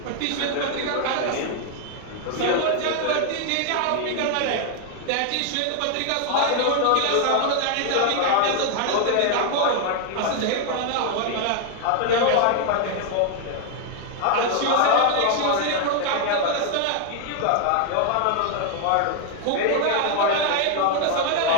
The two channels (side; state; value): both; different; correlation 0.00